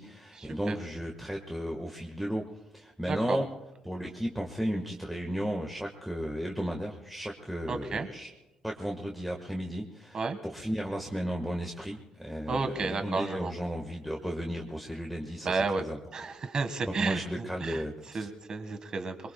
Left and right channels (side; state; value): both; normal; correlation 0.91